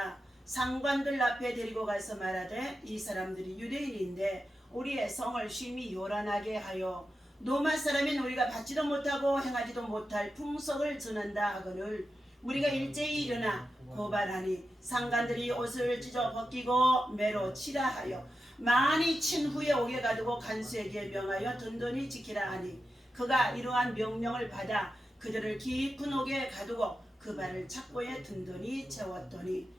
상관들 앞에 데리고 가서 말하되 이 사람들이 유대인인데 우리의 성을 심히 요란하게 하여 로마 사람인 우리가 받지도 못하고 행하지도 못할 풍속을 전한다 하거늘 우리가 일제히 일어나 고발하니 상관들이 옷을 찢어 벗기고 매로 치라 하여 많이 친 후에 옥에 가두고 간수에게 명하여 든든히 지키라 하니 그가 이러한 명령을 받아 그들을 깊은 옥에 가두고 그 발을 착고에 든든히 채웠더니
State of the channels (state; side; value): normal; both; correlation 0.90